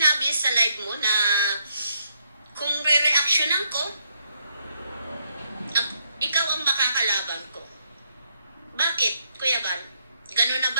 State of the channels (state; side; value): inverted; both; correlation -0.74